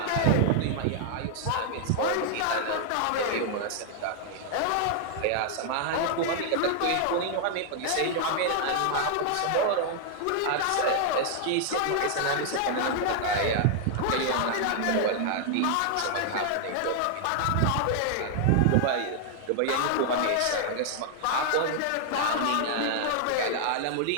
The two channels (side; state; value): both; different; correlation 0.00